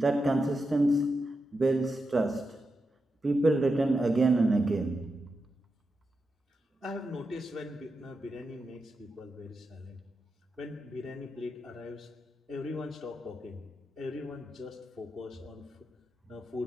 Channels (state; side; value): normal; both; correlation 0.88